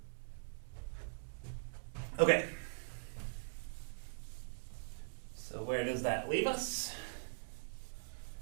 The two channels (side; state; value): left; silent; digital silence